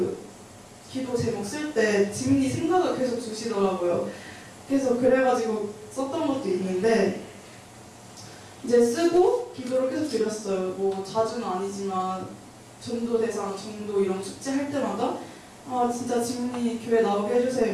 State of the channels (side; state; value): both; identical; correlation 1.00